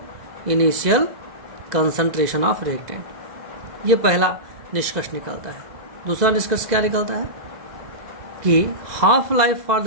initial concentration of reactant. ये पहला निष्कर्ष निकलता है। दूसरा निष्कर्ष क्या निकलता है कि half life for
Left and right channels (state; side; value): late; left; 2.0 ms